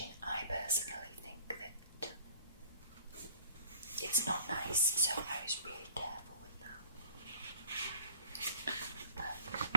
I personally think that it's not nice, so I was really careful with that.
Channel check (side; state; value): both; inverted; correlation -0.53